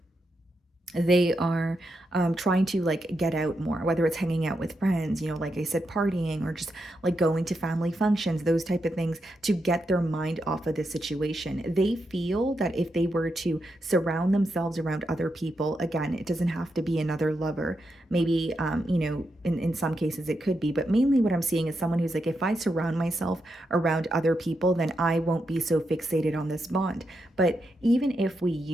they are trying to like get out more, whether it's hanging out with friends, like I said, partying, or just like going to family functions, those type of things, to get their mind off of the situation. They feel that if they were to surround themselves around other people, again, it doesn't have to be another lover. Maybe, in some cases it could be, but mainly what I'm seeing is someone who's like, if I surround myself around other people, then I won't be so fixated on this bond. But even if we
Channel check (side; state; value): both; normal; correlation 0.84